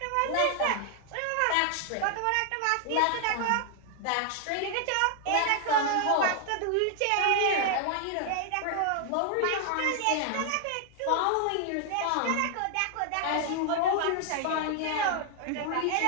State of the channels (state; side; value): different; both; correlation 0.00